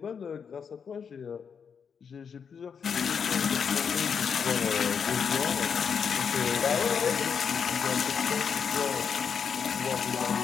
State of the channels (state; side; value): quieter; right; 6.7 dB